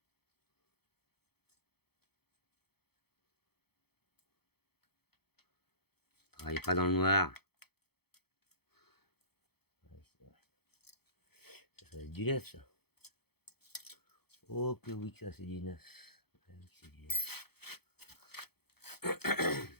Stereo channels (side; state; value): right; late; 0.96 ms